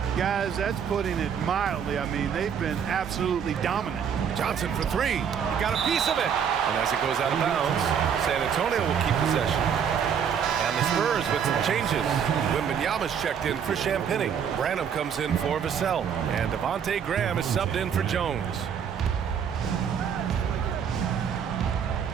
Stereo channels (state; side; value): quieter; left; 7.7 dB